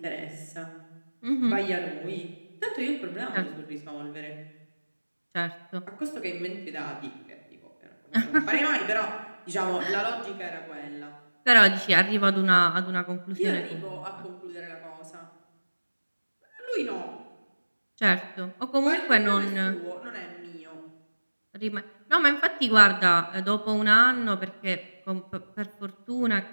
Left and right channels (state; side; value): inverted; both; correlation -1.00